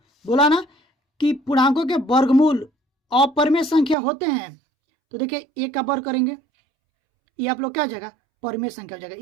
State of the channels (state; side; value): drops out; left; at 4.0 s